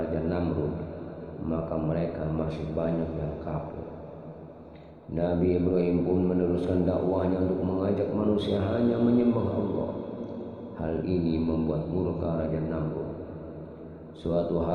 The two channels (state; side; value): identical; both; correlation 1.00